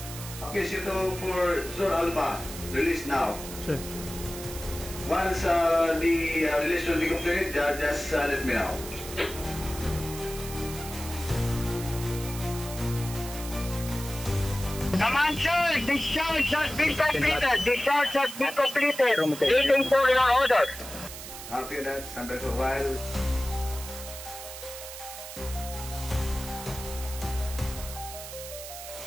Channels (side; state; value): right; noise; hiss, 11 dB below the sound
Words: Okay, CO2 for Zone Alpha. Release now. Sir. Once the release will be completed, just let me know. Command, sir, discharge has been completed. Waiting for your order. Copy that. Stand by for a while.